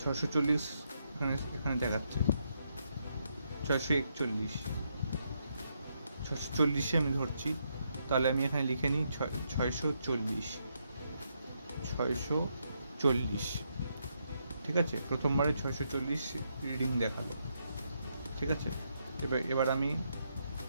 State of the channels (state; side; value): inverted; both; correlation -0.79